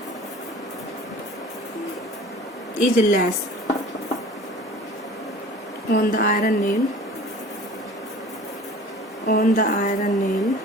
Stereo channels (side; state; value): both; normal; correlation 0.44